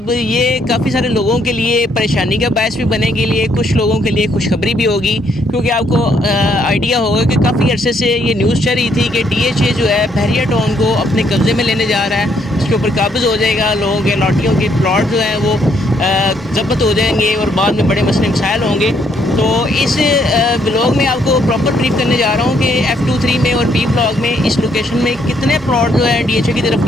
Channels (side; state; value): both; normal; correlation 0.70